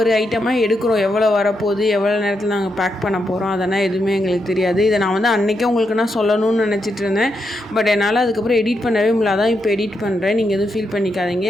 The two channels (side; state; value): both; normal; correlation 0.82